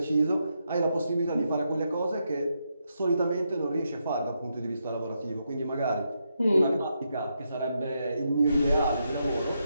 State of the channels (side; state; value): both; inverted; correlation -0.82